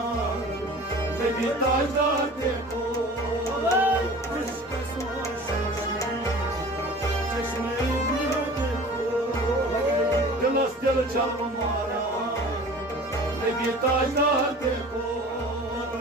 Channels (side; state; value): both; normal; correlation 0.42